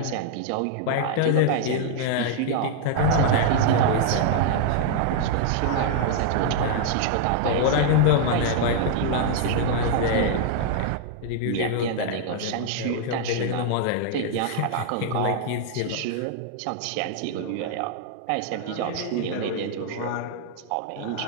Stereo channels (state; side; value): different; both; correlation -0.01